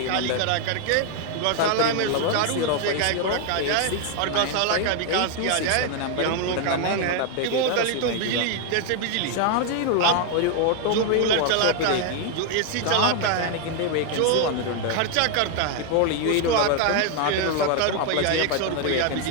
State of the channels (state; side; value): different; both; correlation 0.00